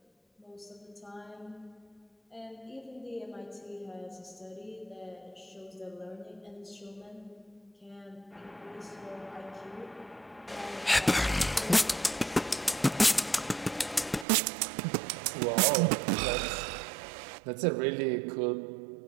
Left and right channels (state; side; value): drops out; left; at 14.2 s